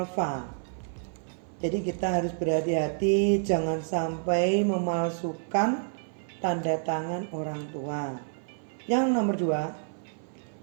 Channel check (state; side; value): silent; left; 55 dB below the other